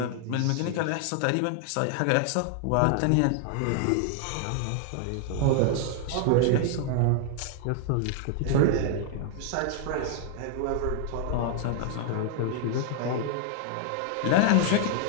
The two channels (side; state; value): both; different; correlation 0.00